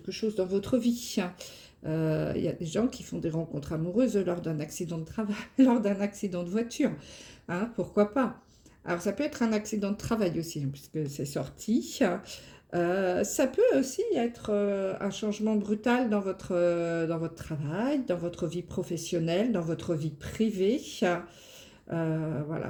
chose dans votre vie. Il y a des gens qui font des rencontres amoureuses lors d'un accident de travail, lors d'un accident de voiture, hein, pourquoi pas. Alors ça peut être un accident de travail aussi, hein, puisque c'est sorti. Ça peut aussi être un changement brutal dans votre travail, dans votre vie professionnelle, dans votre vie privée.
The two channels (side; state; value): both; identical; correlation 1.00